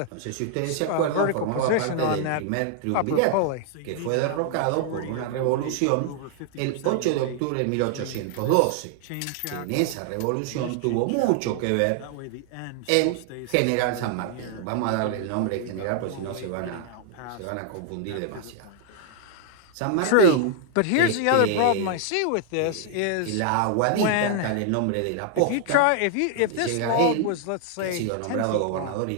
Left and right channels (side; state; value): both; different; correlation 0.00